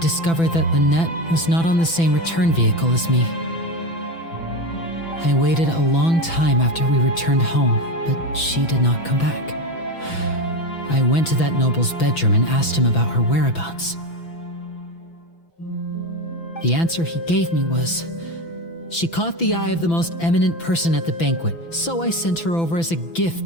that Lynette was not on the same return vehicle as me. I waited a long time after we returned home, but she did not come back. I went to that noble's bedroom and asked him about her whereabouts. The answer he gave me was, she caught the eye of the most eminent person at the banquet, so I sent her over as a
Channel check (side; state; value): right; late; 6.0 ms